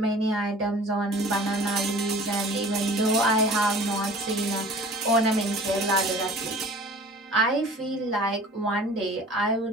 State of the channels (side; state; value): both; normal; correlation 0.45